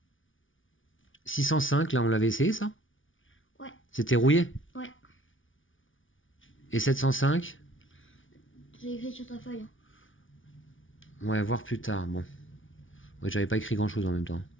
605, là, on l'avait essayé, ça? Ouais. C'était rouillé? Ouais. Et 705? J'ai écrit sur ta feuille. Ouais, voir plus tard, bon. Ouais, j'avais pas écrit grand-chose en même temps.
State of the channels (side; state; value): right; late; 0.57 ms